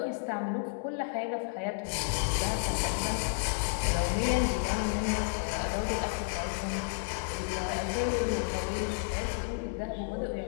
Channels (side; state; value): right; silent; digital silence